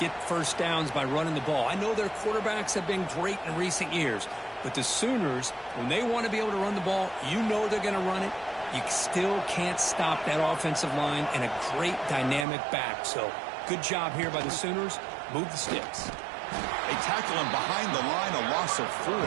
first downs by running the ball. I know their quarterbacks have been great in recent years, but the Sooners, when they want to be able to run the ball, you know they're going to run it. You still can't stop that offensive line and a great dynamic back. So good job here by the Sooners. Move the sticks. They tackle him behind the line, a loss of 4.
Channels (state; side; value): drops out; left; at 12.5 s